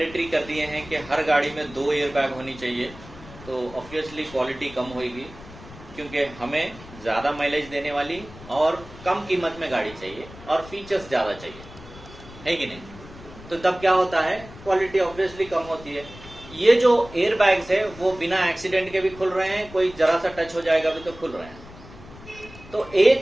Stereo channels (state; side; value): noise; left; rumble, 18 dB below the sound